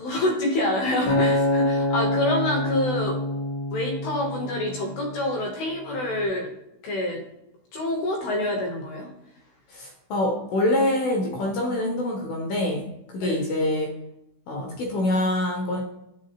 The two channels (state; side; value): late; right; 16 ms